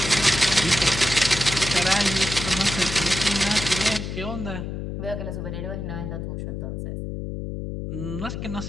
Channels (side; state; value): left; noise; hum, 5 dB below the sound